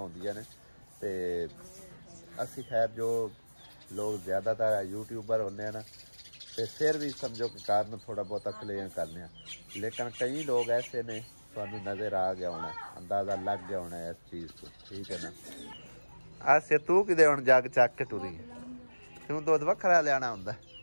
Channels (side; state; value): both; inverted; correlation -1.00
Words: होंदियां ने ते असी खैर जो लोग ज़्यादातर यूट्यूबर होने ना तो फिर भी समझो कि कारण थोड़ा बहुत क्लेम करने लेकिन कई लोग ऐसे ने थानू नज़र आ गया होना अंदाज़ा लग गया होना इस चीज़ को ठीक है ना। आसे तू कि हुण जग चक के टुरी तू दुध वखरा लियाना हुंदा